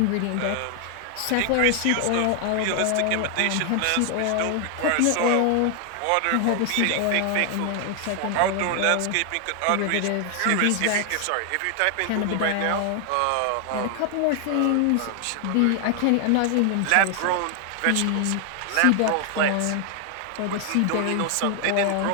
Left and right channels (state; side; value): different; both; correlation 0.00